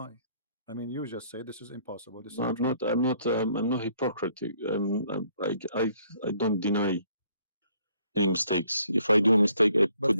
I mean, you just say this is impossible. This is I'm not hypocritic. I don't deny any mistakes. If I do a mistake, I put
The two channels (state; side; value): inverted; both; correlation -0.65